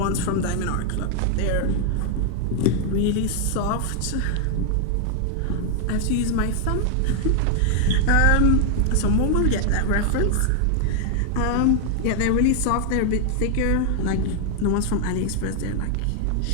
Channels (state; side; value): different; both; correlation 0.00